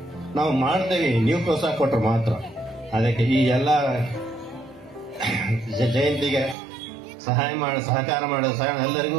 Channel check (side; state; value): left; drops out; at 6.6 s